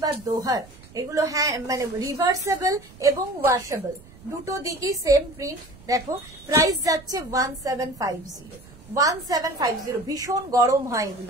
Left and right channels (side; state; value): right; noise; rumble, 22 dB below the sound